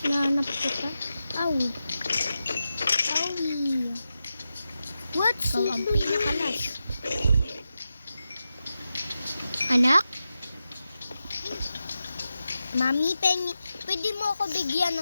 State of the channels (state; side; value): inverted; both; correlation -0.91